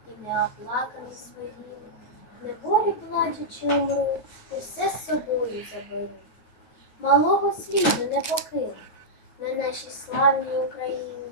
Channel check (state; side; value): late; right; 9.0 ms